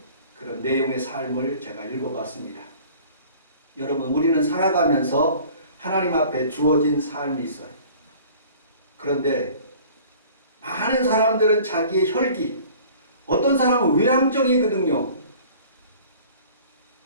그런 내용의 삶을 제가 읽어봤습니다. 여러분 우리는 살아가면서 하나님 앞에 주어진 삶이 있어요. 그런데 많은 사람들은 자기의 혈기, 어떤 사람은 외향적이거든요.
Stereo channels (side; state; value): both; inverted; correlation -0.48